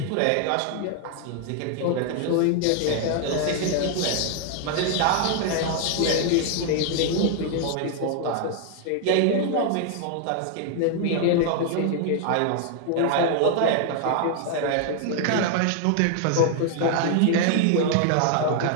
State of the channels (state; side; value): different; both; correlation 0.00